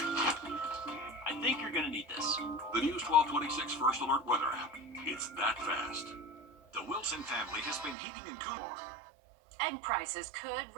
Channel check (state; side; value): drops out; left; at 8.0 s